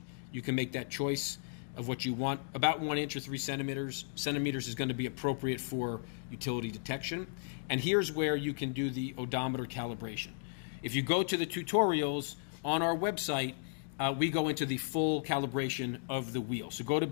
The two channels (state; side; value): silent; right; digital silence